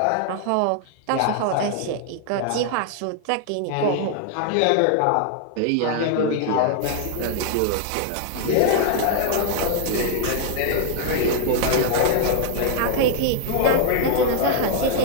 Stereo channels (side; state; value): both; different; correlation 0.00